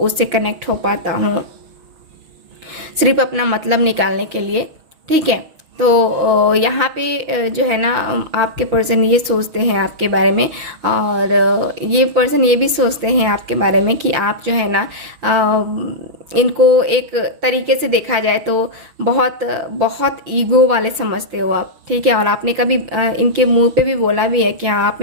कनेक्ट हो पाता हूँ सिर्फ अपना मतलब निकालने के लिए, ठीक है। यहाँ पे जो है ना आपके पर्सन ये सोचते हैं आपके बारे में, और ये पर्सन ये भी सोचते हैं आपके बारे में कि आप जो है ना इनको एक तरीके से देखा जाए तो बहुत बहुत ईगो वाले समझते हो आप, ठीक है। और आपने कभी इनके मुंह पे भी बोला भी है कि हाँ आप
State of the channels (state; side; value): late; left; 6.2 ms